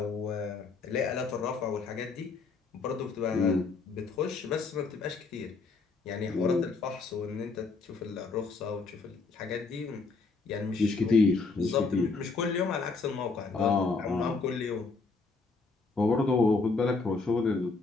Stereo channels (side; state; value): right; quieter; 4.2 dB